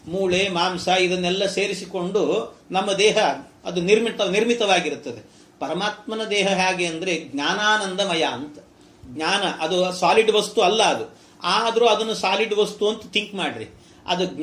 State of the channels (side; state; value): both; identical; correlation 1.00